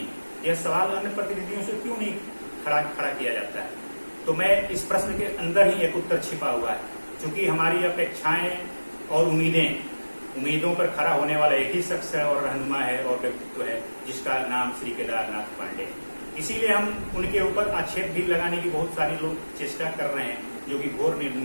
यह सवाल अन्य प्रतिनिधियों से क्यों नहीं खड़ा किया जाता है। तो मैं इस प्रश्न के अंदर ही एक उत्तर छिपा हुआ है, क्योंकि हमारी अपेक्षाएं और उम्मीदों पर खड़ा होने वाला एक ही शख्स है और रहनुमा है और व्यक्तित्व है, जिसका नाम श्री केदारनाथ पांडे है। इसीलिए हम उनके ऊपर आक्षेप भी लगाने की बहुत सारे लोग चेष्टा कर रहे हैं, जो कि घोर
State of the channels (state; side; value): inverted; both; correlation -1.00